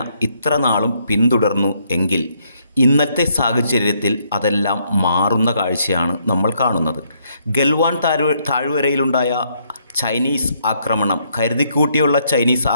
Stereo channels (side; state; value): both; inverted; correlation -0.72